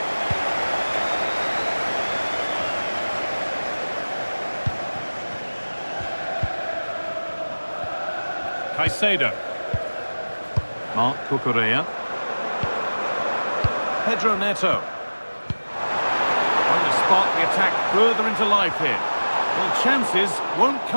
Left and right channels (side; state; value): both; inverted; correlation -1.00